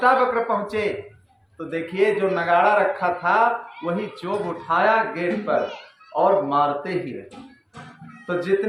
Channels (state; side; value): identical; both; correlation 1.00